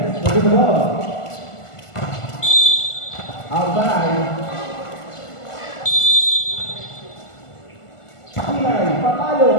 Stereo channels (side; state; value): right; late; 1.5 ms